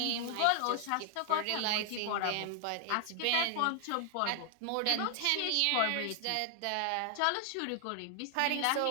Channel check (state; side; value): different; both; correlation 0.00